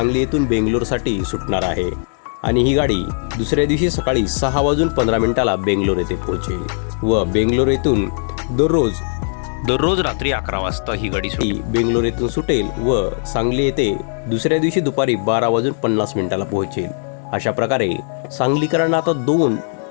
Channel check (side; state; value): right; silent; 67 dB below the other